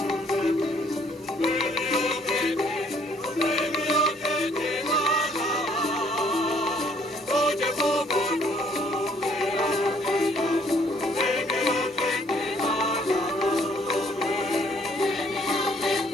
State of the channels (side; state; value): both; normal; correlation 0.64